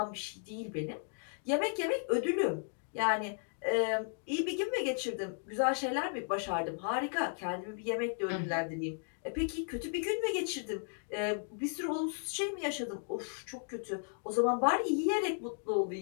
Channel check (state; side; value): silent; right; 54 dB below the other